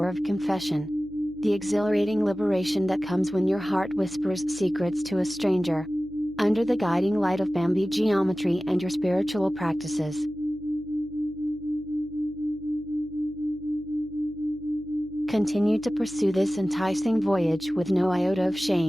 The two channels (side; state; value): left; noise; hum, 22 dB below the sound